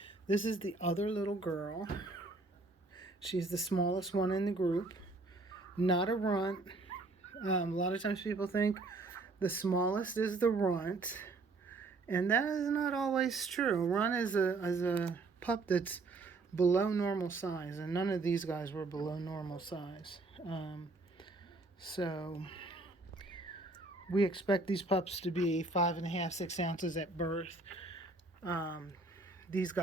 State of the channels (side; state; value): left; quieter; 3.4 dB